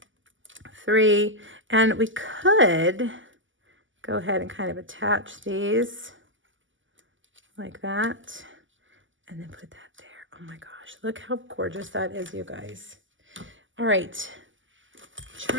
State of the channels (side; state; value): left; late; 0.56 ms